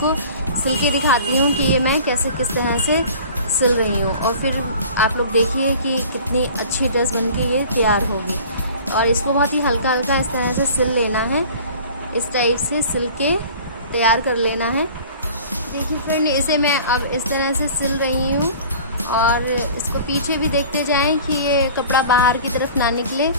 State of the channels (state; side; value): inverted; both; correlation -0.44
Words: सिल के दिखाती हूँ कि ये मैं किस तरह से सिल रही हूँ। और फिर आप लोग देखिए कि कितनी अच्छी ड्रेस बन के ये तैयार होगी। और इसको बहुत ही हल्का हल्का इस तरह से सिल लेना है, इस टाइप से सिल के तैयार कर लेना है। देखिए फ्रेंड इसे मैं अब इस तरह से सिल रही हूँ और इसको पीछे भी देखते जाएं कि ये कपड़ा बाहर की तरफ ना निकले।